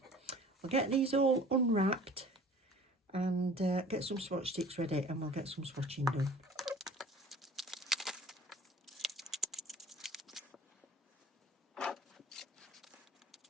I'll get these all unwrapped and get some swatch sticks ready, and we'll get some swatching done.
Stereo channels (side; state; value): both; normal; correlation 0.47